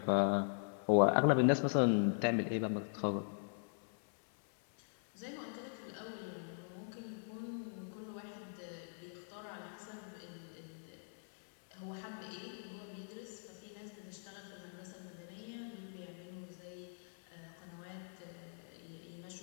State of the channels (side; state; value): right; silent; 51 dB below the other